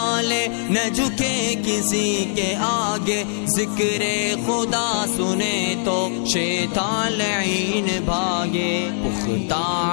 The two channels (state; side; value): silent; right; digital silence